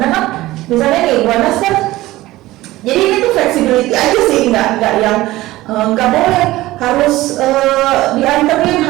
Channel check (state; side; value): quieter; left; 17.4 dB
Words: kan misalnya nih Bu Anas kan, jadi ini tuh flexibility aja sih, nggak yang nggak boleh harus dianterin,